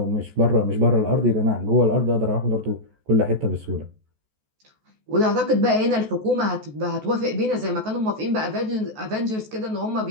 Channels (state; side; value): late; left; 14 ms